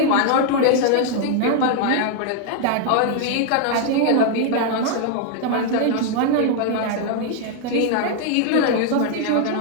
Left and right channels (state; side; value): different; both; correlation 0.00